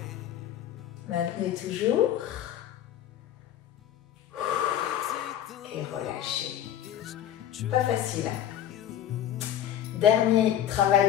Maintenez toujours. Et relâchez. Pas facile. Dernier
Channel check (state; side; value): quieter; right; 10.8 dB